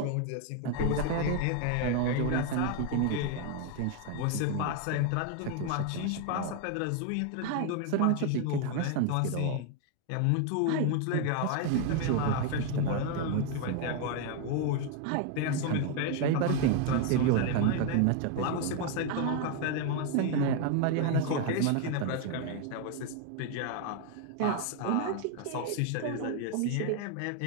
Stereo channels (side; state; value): both; different; correlation 0.01